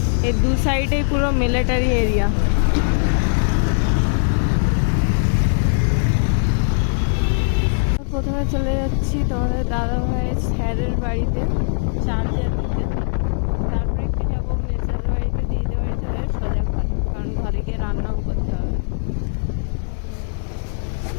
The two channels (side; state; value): right; silent; digital silence